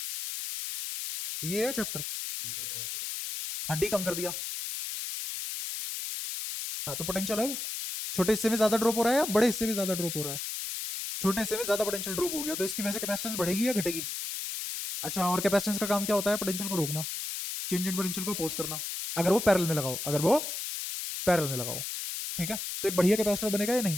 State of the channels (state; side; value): noise; left; hiss, 5 dB below the sound